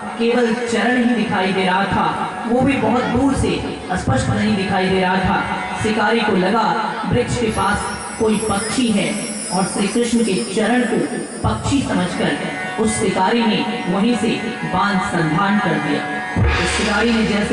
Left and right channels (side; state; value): both; identical; correlation 1.00